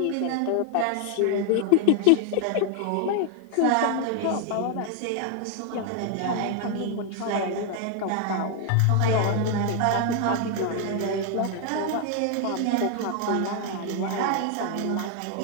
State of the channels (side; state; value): both; different; correlation 0.00